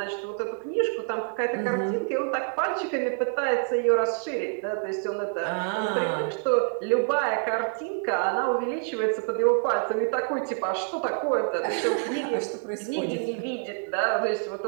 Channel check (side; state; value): left; silent; 60 dB below the other